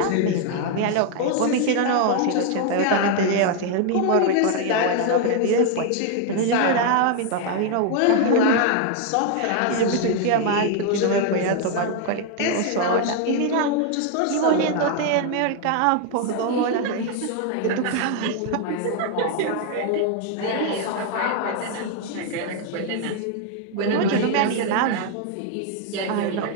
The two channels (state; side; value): different; both; correlation 0.00